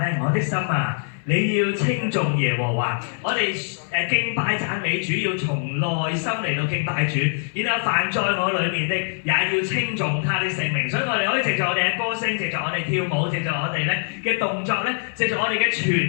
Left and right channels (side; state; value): right; silent; 63 dB below the other